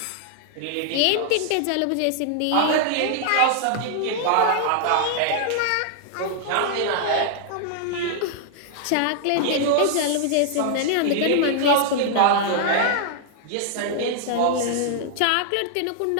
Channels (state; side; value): different; both; correlation -0.01